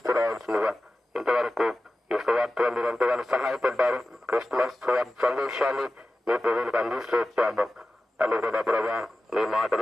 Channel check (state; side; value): normal; both; correlation 0.94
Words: రావాల్సిందిగా. ఇంతవరకు ఈ సువార్తలో మీరు ఎంతగానో సహాయపడ్డారు. క్రిస్మస్ సందేశాన్ని మీ ప్రజలకు అందిస్తూ వచ్చాము. అని కూడా ప్రభా మీ